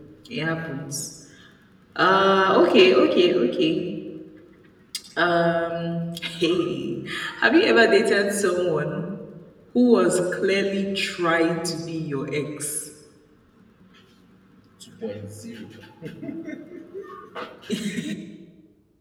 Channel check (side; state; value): both; identical; correlation 1.00